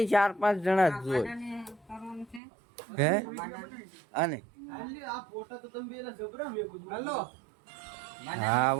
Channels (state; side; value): drops out; left; at 2.4 s